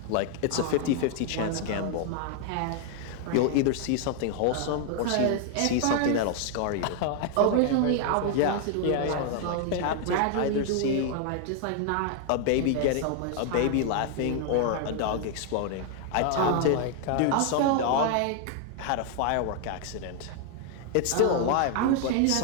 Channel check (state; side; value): different; both; correlation 0.00